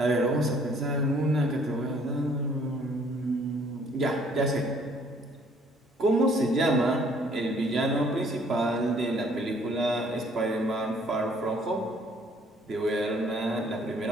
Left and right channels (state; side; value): normal; both; correlation 0.60